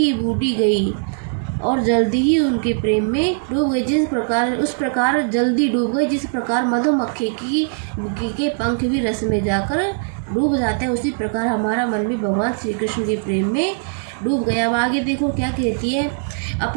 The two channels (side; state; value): left; silent; 65 dB below the other